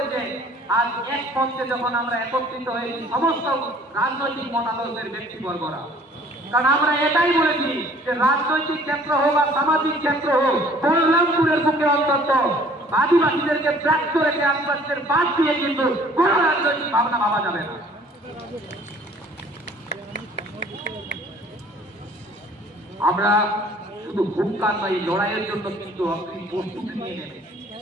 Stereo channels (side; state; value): both; normal; correlation 0.54